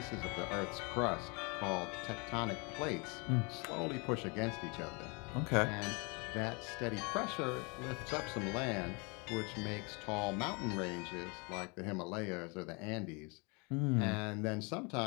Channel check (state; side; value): quieter; right; 30.9 dB